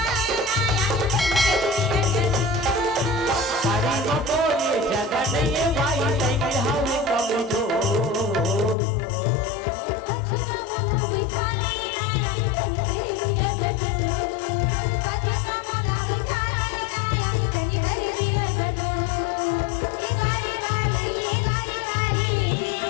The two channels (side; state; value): right; drops out; at 8.8 s